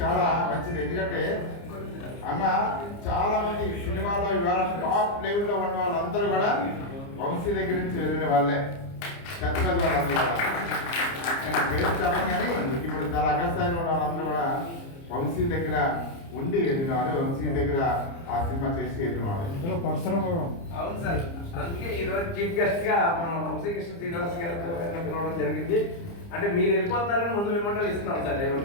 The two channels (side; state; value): right; late; 30 ms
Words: చాలా మంచిది. ఎందుకంటే అన్న చాలా మంది సినిమాలో ఇవాళ టాప్ లెవెల్లో ఉన్న వాళ్ళందరూ కూడా వంశీ దగ్గర నుంచి వెళ్ళిన వాళ్ళే, పెద్ద పెద్ద వాళ్ళందరూ కూడా. నేను పేరు చెప్పను కానీ ఇప్పుడు చాలా అగస్థాయిలో ఉన్న వాళ్ళందరూ కూడా వంశీ దగ్గర ఉండి వెళ్ళిన వాళ్ళు, వంశీ దగ్గర ఆ సినిమా చేసి వెళ్ళిన వాళ్ళు. అవును సార్, అందుకే ఈరోజు చీఫ్ గెస్ట్ గా మనం వంశీకృష్ణ శ్రీనివాస్ గారితో పిలవడం జరిగింది. అంటే మీరు వెళ్ళిపోతారని ముందు మిమ్మల్ని ఇస్తున్నాం సార్.